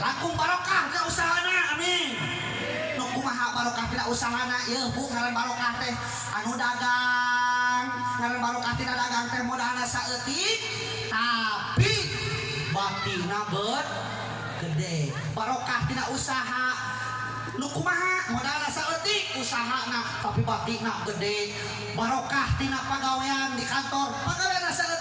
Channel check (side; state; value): both; identical; correlation 1.00